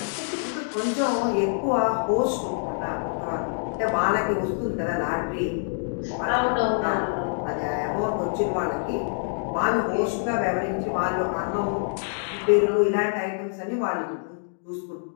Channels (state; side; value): silent; right; digital silence